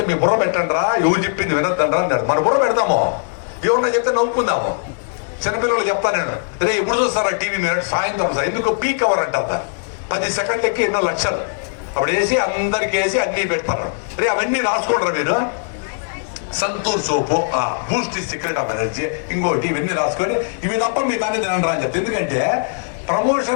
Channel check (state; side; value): silent; right; digital silence